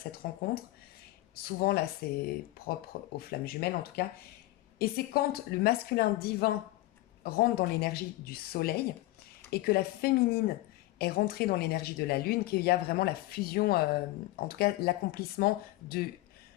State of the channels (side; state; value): right; quieter; 18.1 dB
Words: rencontre. Souvent là c'est propre aux flammes jumelles en tout cas. Et c'est quand le masculin divin rentre dans l'énergie du soleil et que la féminine est rentrée dans l'énergie de la lune qu'il y a vraiment la fusion, en tout cas l'accomplissement de